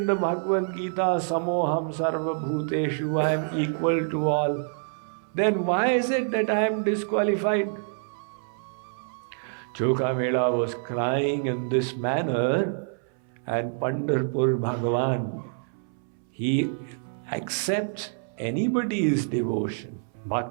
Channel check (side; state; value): left; silent; 60 dB below the other